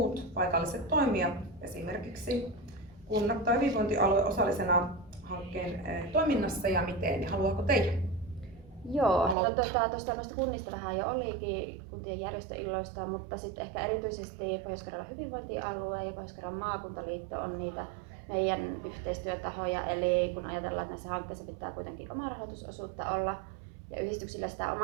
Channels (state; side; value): drops out; left; at 9.3 s